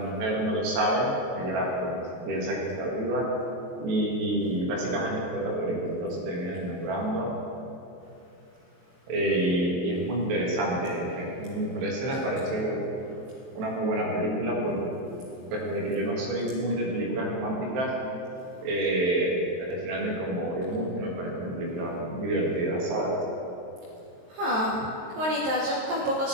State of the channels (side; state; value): left; late; 23 ms